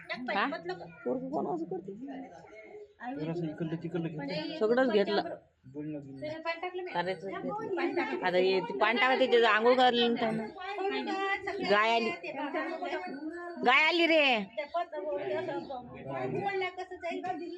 जरासं इकडलं तिकडलं घे. सगळंच घेतलं आता हे ते पाणी टाका त्याच्या आंघोळ करायला त्यानं गाय आली रे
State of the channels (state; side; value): identical; both; correlation 1.00